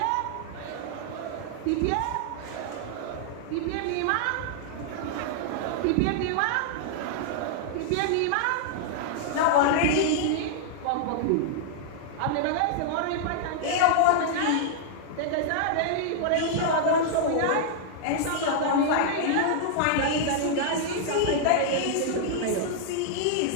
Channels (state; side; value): different; both; correlation -0.01